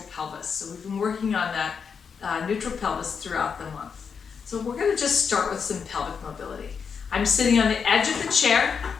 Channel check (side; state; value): right; quieter; 6.2 dB